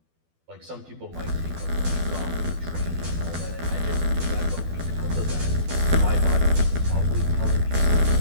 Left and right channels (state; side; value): late; left; 12 ms